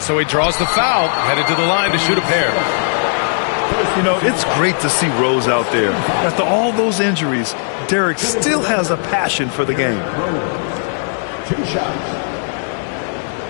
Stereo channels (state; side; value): silent; right; 65 dB below the other